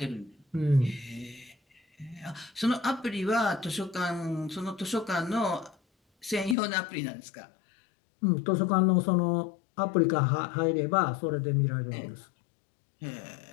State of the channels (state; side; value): drops out; right; at 6.6 s